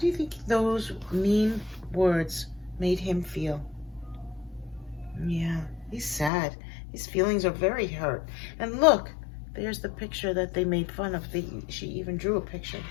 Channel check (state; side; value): drops out; right; at 6.3 s